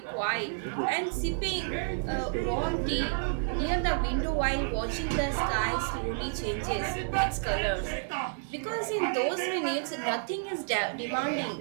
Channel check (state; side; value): silent; left; digital silence